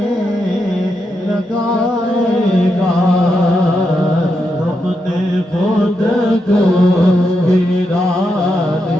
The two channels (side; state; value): both; normal; correlation 0.84